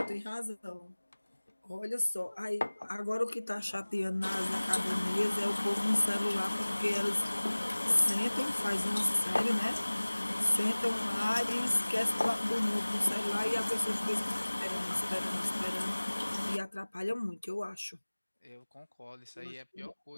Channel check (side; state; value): both; inverted; correlation -1.00